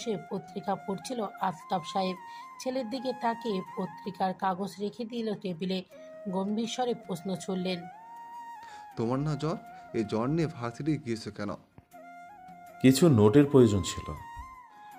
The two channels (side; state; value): both; identical; correlation 1.00